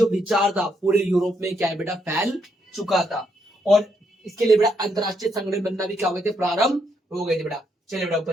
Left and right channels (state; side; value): normal; both; correlation 0.76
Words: विचार था पूरे यूरोप में क्या है बेटा फैल चुका था। और इसके लिए बेटा अंतरराष्ट्रीय संगठन बनना भी क्या हो गए थे, प्रारंभ हो गए थे बेटा। चलिए बेटा